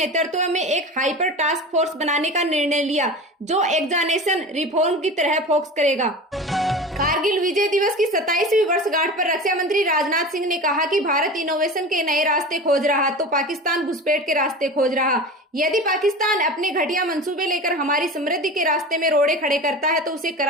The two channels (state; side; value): normal; both; correlation 0.32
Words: में एक हाइपर टास्क फोर्स बनाने का निर्णय लिया जो एग्जामिनेशन रिफॉर्म की तरह फोकस करेगा। कारगिल विजय दिवस की 27वीं वर्षगांठ पर रक्षा मंत्री राजनाथ सिंह ने कहा कि भारत इनोवेशन के नए रास्ते खोज रहा तो पाकिस्तान घुसपैठ के रास्ते खोज रहा। यदि पाकिस्तान अपने घटिया मंसूबे लेकर हमारी समृद्धि के रास्ते में रोड़े खड़े करता है तो उसे